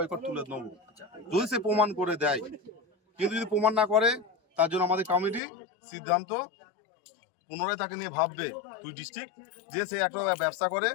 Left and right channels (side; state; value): right; drops out; at 5.4 s